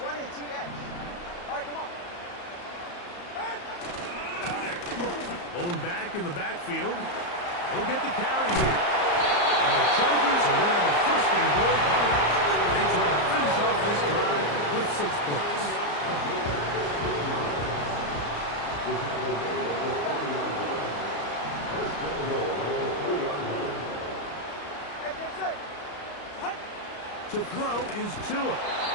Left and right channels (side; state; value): right; late; 34 ms